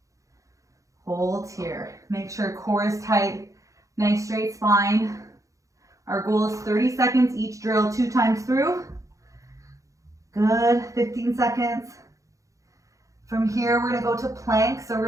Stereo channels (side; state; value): left; late; 0.16 ms